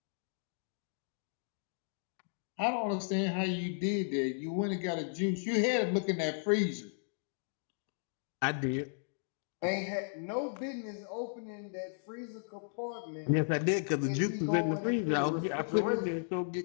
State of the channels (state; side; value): silent; right; digital silence